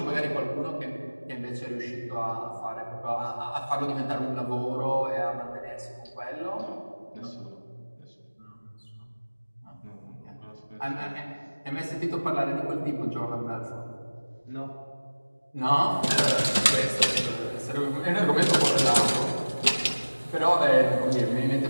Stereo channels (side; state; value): both; inverted; correlation -1.00